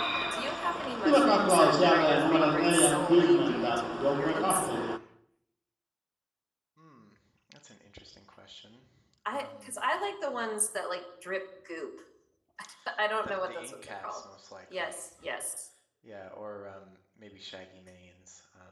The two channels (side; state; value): both; identical; correlation 1.00